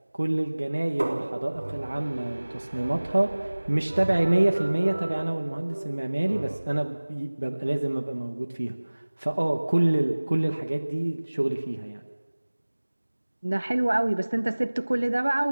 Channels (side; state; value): both; inverted; correlation -1.00